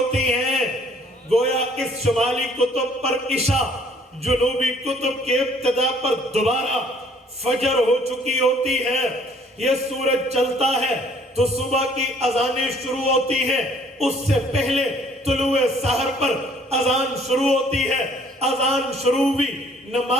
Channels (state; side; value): normal; both; correlation 0.59